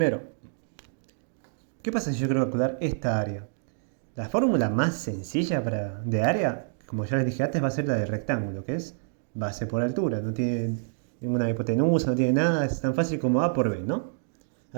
¿qué pasa si yo quiero calcular esta área? La fórmula más sencilla de área, como ya les dije antes, va a ser la del rectángulo, que es base por altura. No tiene ninguna hipotenusa, no tiene nada, es tan fácil como A por B, ¿no?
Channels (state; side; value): silent; left; digital silence